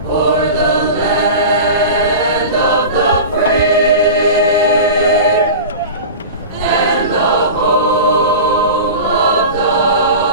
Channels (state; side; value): inverted; both; correlation -0.31